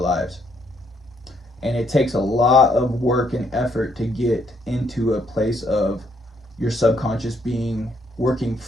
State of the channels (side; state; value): both; normal; correlation 0.71